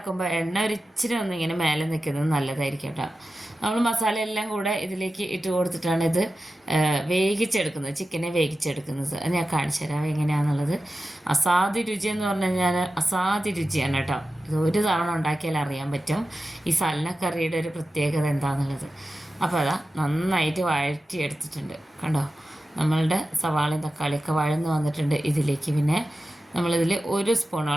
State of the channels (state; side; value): normal; both; correlation 0.93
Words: എണ്ണ ഒരിച്ചിരി ഒന്നിങ്ങനെ മേലെ നിൽക്കുന്നത് നല്ലതായിരിക്കും കേട്ടോ. നമ്മൾ മസാല എല്ലാം കൂടെ ഇതിലേക്ക് ഇട്ട് കൊടുത്തിട്ടാണ് ഇത് വേവിച്ചെടുക്കുന്നത്, ചിക്കനെ വേവിച്ചെടുക്കുന്നത്. അത് ഞാൻ കാണിച്ചു തരാം എങ്ങനെയാണെന്നുള്ളത്. അസാധ്യ രുചി എന്ന് പറഞ്ഞു കഴിഞ്ഞാൽ അസാധ്യ രുചിയാണ് കേട്ടോ. ഇത് ഒരു തവണ ഉണ്ടാക്കിയാൽ അറിയാൻ പറ്റും ഈ സൽന കറിയുടെ ഒരു പ്രത്യേകത എന്താണെന്നുള്ളത്. അപ്പോൾ അതാ നന്നായിട്ട് വഴറ്റിയെടുത്തിട്ടുണ്ട് കണ്ടോ. നമ്മളുടെ സവാളയും തക്കാളിയൊക്കെ വഴന്ന് വന്നിട്ടുണ്ട്. ഇതിലേക്ക് പിന്നെ നമ്മളിതിൽ 1